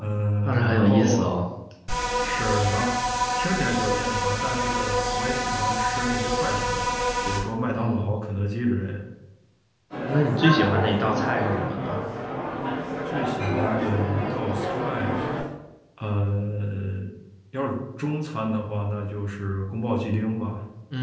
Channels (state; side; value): identical; both; correlation 1.00